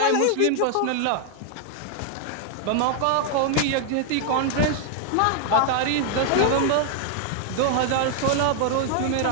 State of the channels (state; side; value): different; both; correlation 0.00